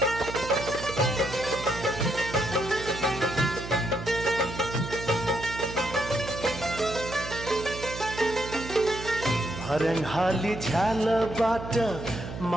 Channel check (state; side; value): noise; right; hum, 10 dB below the sound